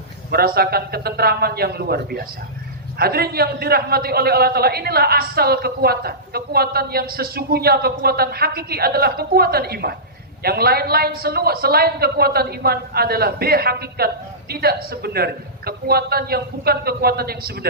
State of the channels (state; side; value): normal; both; correlation -0.19